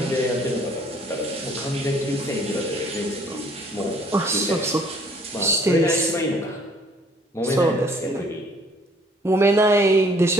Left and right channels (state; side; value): normal; both; correlation 0.59